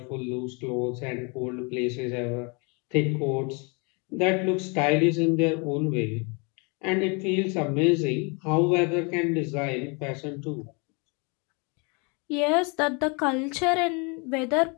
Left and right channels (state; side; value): quieter; right; 32.3 dB